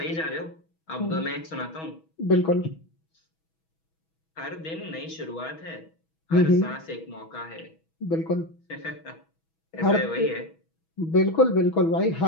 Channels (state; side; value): late; right; 6.2 ms